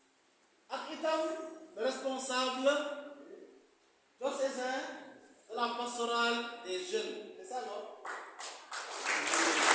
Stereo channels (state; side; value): identical; both; correlation 1.00